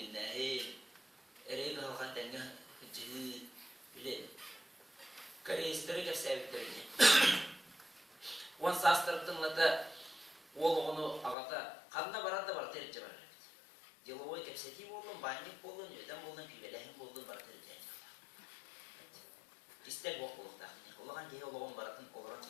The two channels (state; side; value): drops out; right; at 11.4 s